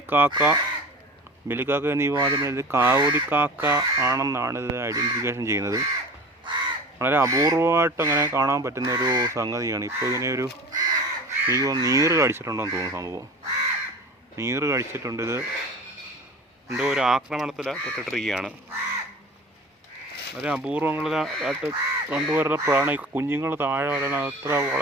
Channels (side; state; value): both; normal; correlation 0.37